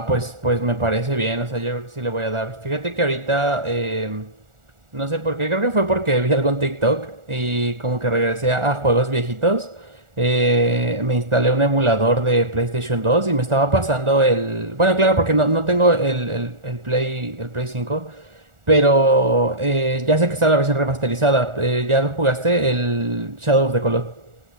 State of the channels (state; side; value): late; left; 1.4 ms